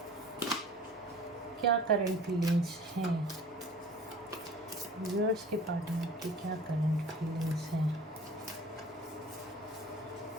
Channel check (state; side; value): normal; both; correlation 0.45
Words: क्या करंट फीलिंग्स हैं। व्यूअर्स के पार्टनर की क्या करंट फीलिंग्स हैं।